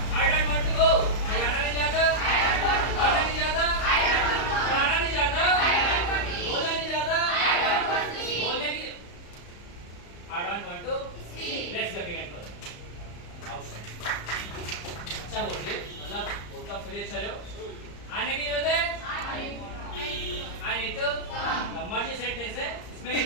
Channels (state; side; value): late; right; 34 ms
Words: I don't want to go. मैं जाना नहीं चाहता। आना नहीं चाहता। पढ़ाना नहीं चाहता। बोलना नहीं चाहता। बोलने की I don't want to speak. Let's go begin करो। अच्छा बोल रहे, मतलब बोलता आप सभी अच्छा रहे हो। आने की जरूरत है। I need to come. मर्जी सेंटेंस है। इसमें